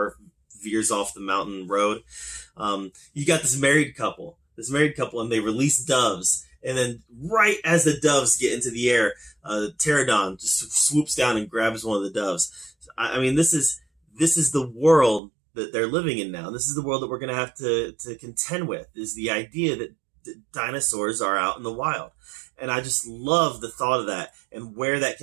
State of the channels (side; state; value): left; drops out; at 15.2 s